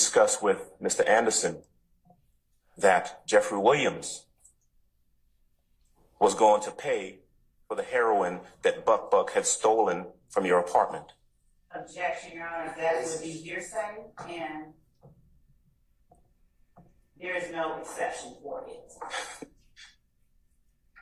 with Mr. Anderson that Jeffrey Williams was going to pay for the heroin that Buck had stolen from your apartment? Objection, Your Honor, that would be hearsay, and there is no exception for it.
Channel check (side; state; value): both; identical; correlation 1.00